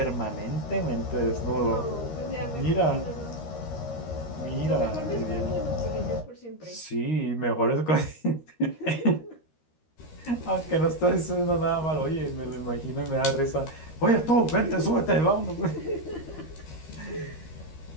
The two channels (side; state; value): right; late; 13 ms